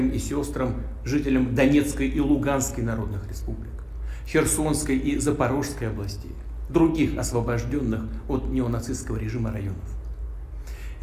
и сестрам, жителям Донецкой и Луганской народных республик, Херсонской и Запорожской областей, других освобожденных от неонацистского режима районов.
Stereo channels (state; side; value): identical; both; correlation 1.00